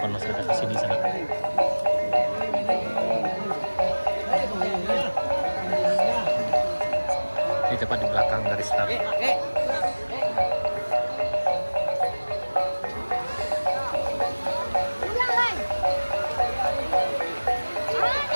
masyarakat di sini sana. Di tepat di belakang garis start.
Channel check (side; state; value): both; inverted; correlation -1.00